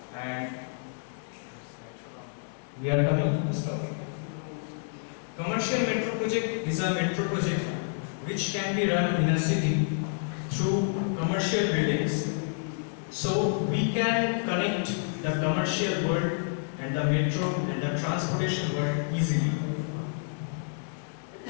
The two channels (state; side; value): silent; right; digital silence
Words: and we are coming to this topic. Commercial metro project is a metro project which can be run in a city through commercial buildings. So we can connect the commercial world and the metro and the transportation world easily.